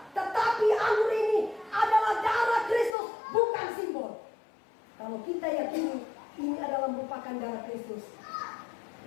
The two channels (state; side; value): drops out; right; at 3.0 s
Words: tetapi anggur ini adalah darah Kristus, bukan simbol. Kalau kita yakini ini adalah merupakan darah Kristus,